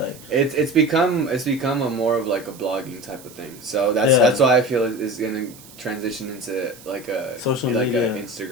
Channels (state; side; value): noise; right; hiss, 20 dB below the sound